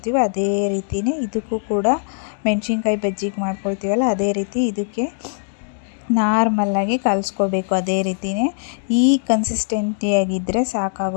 ಅದೇ ರೀತಿಯೇ ಇದಕ್ಕೂ ಕೂಡ ಮೆಣಸಿನ್ಕಾಯಿ ಬಜ್ಜಿಗೆ ಮಾಡ್ಕೊಳ್ತೀವಲ್ಲ ಅದೇ ರೀತಿ ಇದಕ್ಕೆ ನಾರ್ಮಲ್ಲಾಗಿ ಕಲಿಸ್ಕೋಬೇಕು. ಅದೇ ರೀತಿಯೇ ಈ ಕನ್ಸಿಸ್ಟೆನ್ಸಿಯಾಗಿದ್ದರೆ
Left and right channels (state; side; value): silent; right; digital silence